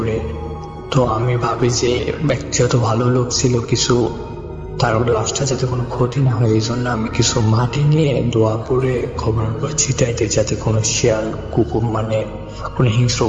তো আমি ভাবি যে ব্যক্তিগত ভালো লোক ছিল কিছু, তার লাশটা যাতে কোনো ক্ষতি না হয় এই জন্য আমি কিছু মাটি নিয়ে দোয়া করে খবর ছিটাইতে, যাতে কোনো শিয়াল কুকুর মানে কোনো হিংস্র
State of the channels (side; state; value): both; identical; correlation 1.00